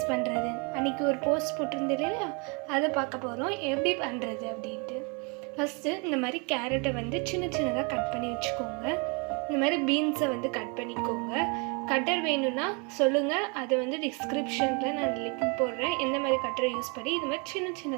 பண்ணுறது. அன்றைக்கி ஒரு போஸ்ட் போட்டிருந்தது இல்லையா, அதை பார்க்க போகிறோம் எப்படி பண்ணுறது அப்படின்ட்டு. ஃபஸ்ட்டு இந்த மாதிரி கேரட்டை சின்ன சின்னதாக கட் பண்ணி வச்சுக்கோங்க. இந்த மாதிரி பீன்ஸை கட் பண்ணிக்கோங்க. கட்டர் வேணும்னா சொல்லுங்கள், அதை டிஸ்கிரிப்ஷனில் நான் லிங்க் போடுறேன். எந்த மாதிரி கட்டரை யூஸ் பண்ணி இது மாதிரி சின்ன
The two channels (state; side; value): quieter; left; 32.7 dB